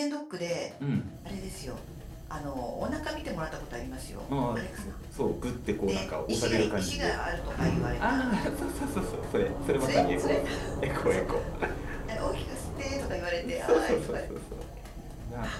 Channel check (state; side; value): identical; both; correlation 1.00